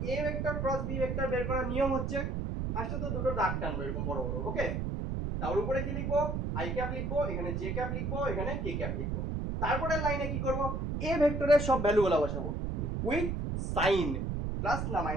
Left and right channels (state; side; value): noise; right; rumble, 1 dB below the sound